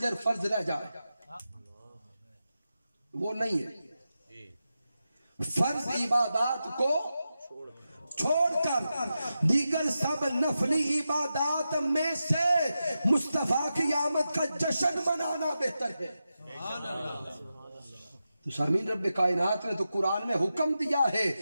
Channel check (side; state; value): both; inverted; correlation -0.90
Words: فرض رہ جائے، وہ نہیں ہے۔ فرض عبادات کو چھوڑ کر دیگر سب نفلی عبادات میں سے مصطفیٰ کی آمد کا جشن منانا بہتر ہے۔ تو سامعین، رب کائنات نے تو قرآن میں حکم دیا ہے